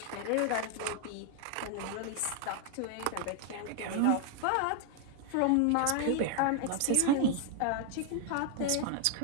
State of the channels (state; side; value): different; both; correlation 0.00